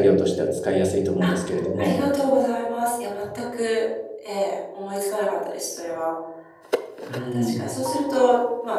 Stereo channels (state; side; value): identical; both; correlation 1.00